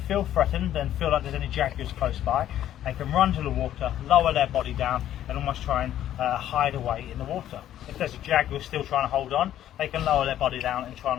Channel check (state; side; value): quieter; right; 11.8 dB